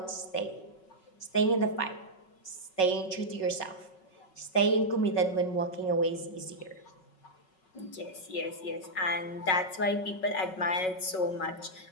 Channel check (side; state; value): right; late; 5.4 ms